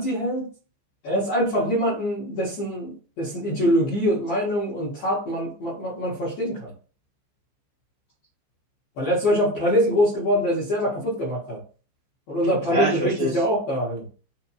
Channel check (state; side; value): late; right; 15 ms